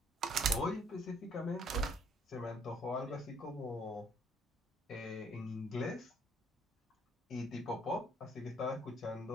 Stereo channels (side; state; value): both; normal; correlation 0.63